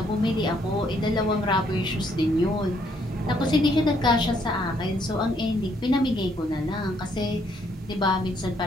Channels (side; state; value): both; normal; correlation 0.70